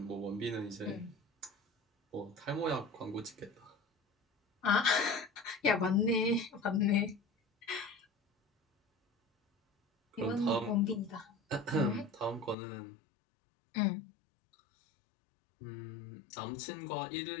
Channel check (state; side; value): drops out; right; at 12.6 s